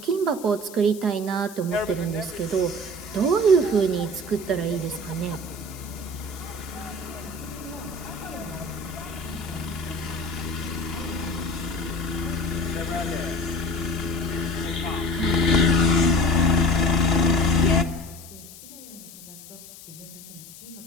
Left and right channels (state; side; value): noise; left; hiss, 17 dB below the sound